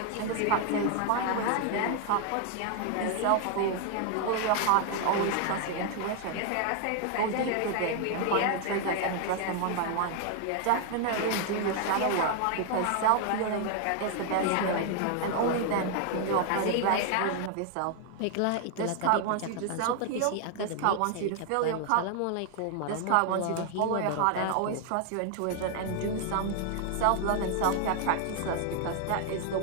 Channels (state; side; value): different; both; correlation 0.00